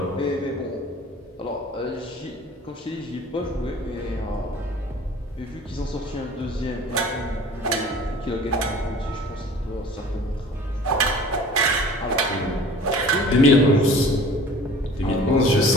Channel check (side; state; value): both; normal; correlation 0.46